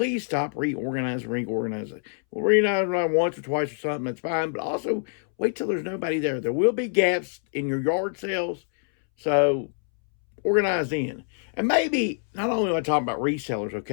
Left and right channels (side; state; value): right; silent; 61 dB below the other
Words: stop reorganizing. We'll reorganize once or twice or something, that's fine. But also wait till there's nobody there. There will be gaps in your yard sales. So organize in. And maybe not only am I talking about resellers,